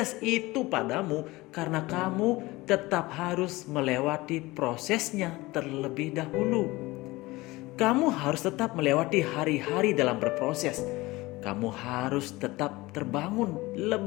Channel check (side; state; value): right; quieter; 20.6 dB